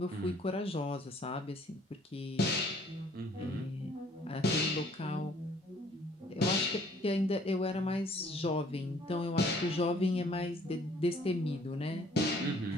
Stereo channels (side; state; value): both; normal; correlation 0.59